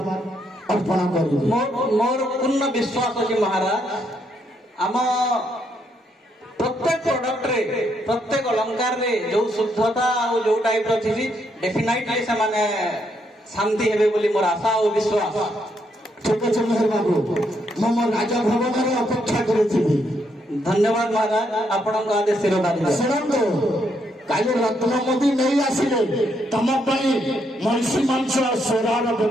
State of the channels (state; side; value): normal; both; correlation 0.76